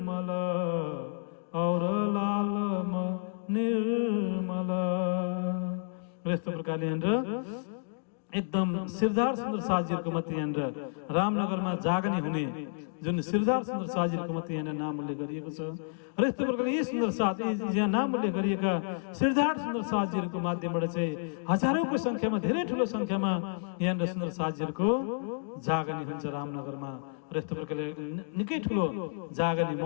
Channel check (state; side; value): silent; right; digital silence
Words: और लालमन निर्मल। यस्तो प्रकारले एकदम श्रीधर सुन्दर साथजीहरूको मात्रै यहाँनिर रामनगरमा जागनी हुने जुन श्रीधर सुन्दर साथजीहरूको मात्रै यहाँनिर नाम उल्लेख गरिएको छ। र यस्तो प्रकारले यी सुन्दर साथ, यहाँ नाम उल्लेख गरिएका श्रीधर सुन्दर साथजीहरूको माध्यमबाट चाहिँ हजारौंको संख्यामा, धेरै ठुलो संख्यामा यहाँनिर सुन्दर साथजीहरूको जागनी हुन्छ रामनगरमा। र यस्तो प्रकारले निकै ठुलो जागनी